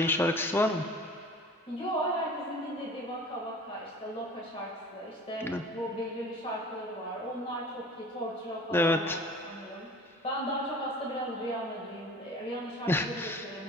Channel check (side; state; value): both; normal; correlation 0.43